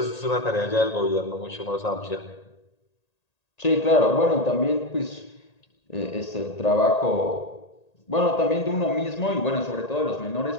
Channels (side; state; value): right; late; 1.8 ms